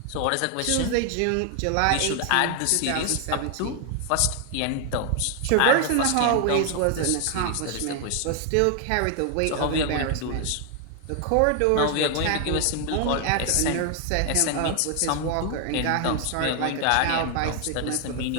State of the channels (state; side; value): different; both; correlation 0.00